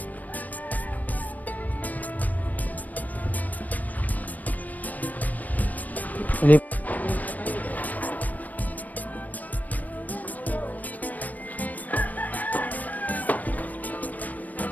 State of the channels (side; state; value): right; late; 0.078 ms